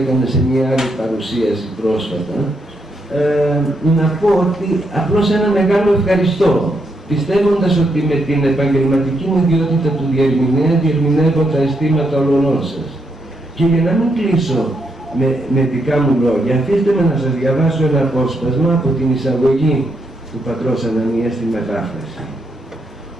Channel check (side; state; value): both; normal; correlation 0.79